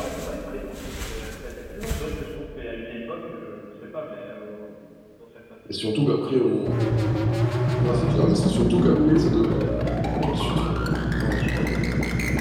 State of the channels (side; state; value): both; identical; correlation 1.00